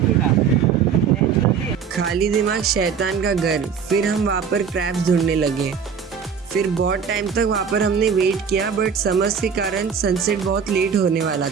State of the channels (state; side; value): quieter; left; 6.8 dB